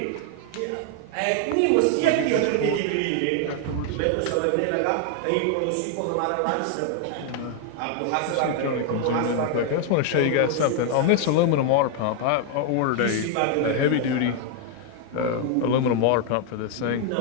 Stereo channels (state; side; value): different; both; correlation 0.00